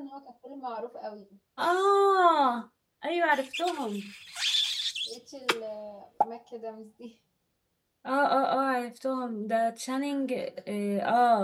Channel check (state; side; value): identical; both; correlation 1.00